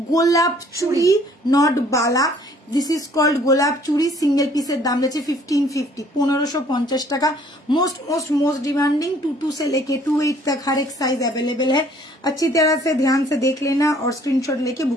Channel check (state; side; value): normal; both; correlation 0.58